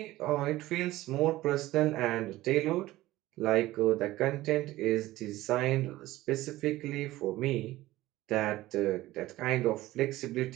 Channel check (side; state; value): left; quieter; 16.9 dB